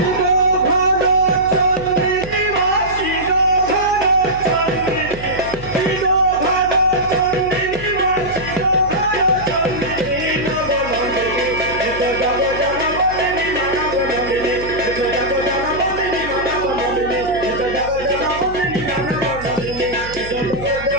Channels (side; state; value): right; noise; hum, 14 dB below the sound